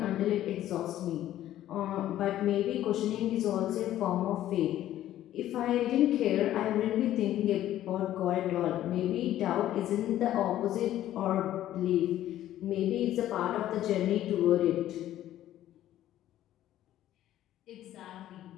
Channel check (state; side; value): quieter; right; 12.9 dB